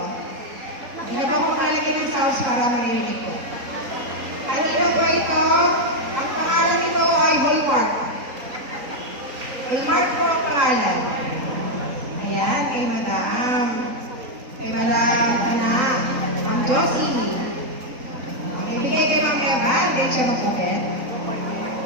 Hindi na po ako makalagay ng sauce para marinig ko. Kanino po ito? Ang pangalan nito ay Hallmark. Hallmark po ang pangalan. Ayan, kay Madam. Kay Madam Tana. Ma'am Josie. Ibigay kay Ma'am Eva, hindi siya mag-open.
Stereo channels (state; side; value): late; left; 3.9 ms